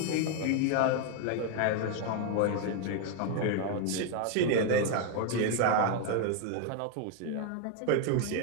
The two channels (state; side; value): different; both; correlation 0.01